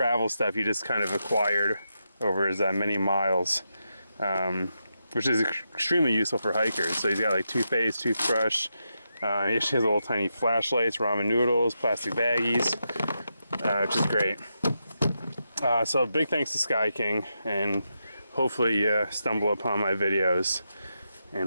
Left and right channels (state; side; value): inverted; both; correlation -0.85